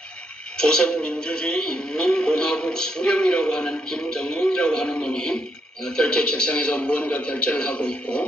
조선민주주의 인민공화국 수령이라고 하는 김정은이라고 하는 놈이 결제 책상에서 무언가 결제를 하고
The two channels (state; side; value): normal; both; correlation 0.77